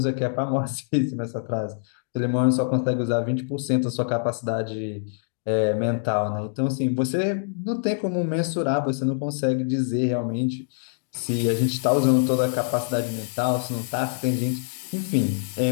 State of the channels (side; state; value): right; silent; 62 dB below the other